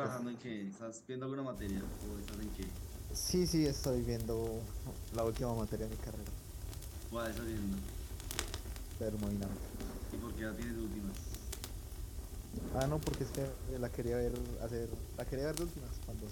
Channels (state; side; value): identical; both; correlation 1.00